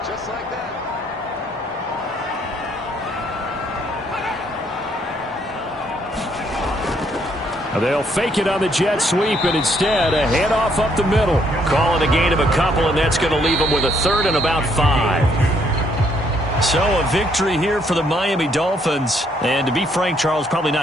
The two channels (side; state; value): both; normal; correlation 0.69